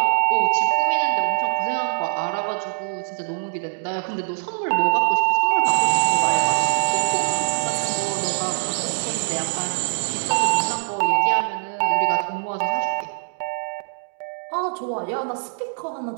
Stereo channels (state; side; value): silent; left; digital silence